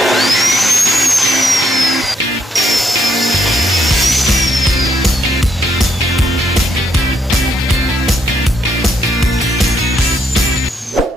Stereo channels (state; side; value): normal; both; correlation 0.75